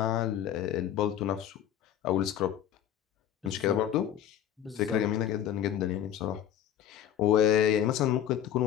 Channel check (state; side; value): quieter; right; 10.5 dB